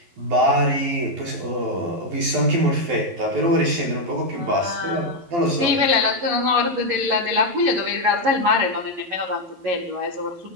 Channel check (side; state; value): left; late; 12 ms